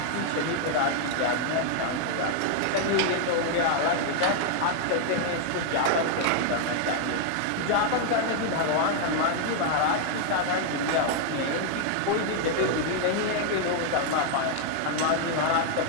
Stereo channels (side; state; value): both; different; correlation 0.00